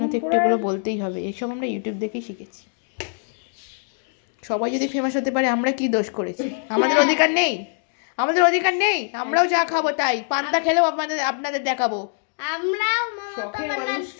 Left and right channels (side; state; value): right; silent; 63 dB below the other